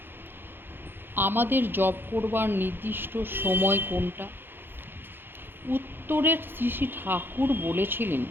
আমাদের জপ করবার নির্দিষ্ট সময় কোনটা? উত্তরের শ্রী ঠাকুর বলেছিলেন,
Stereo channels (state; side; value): late; left; 0.10 ms